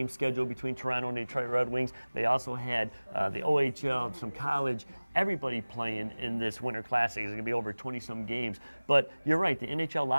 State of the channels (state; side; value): inverted; both; correlation -1.00